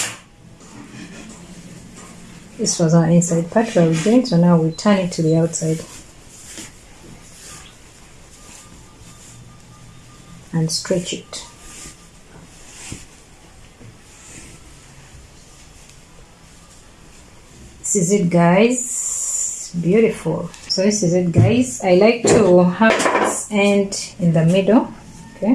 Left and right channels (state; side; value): identical; both; correlation 1.00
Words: This was our inside part where we joined, so now we turn it to the outside. And stretch it. This is it guys, beautiful. So this is it guys. I like to have this end in the middle,